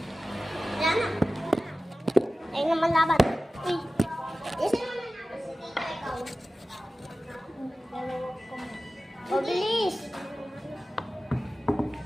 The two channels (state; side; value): normal; both; correlation 0.95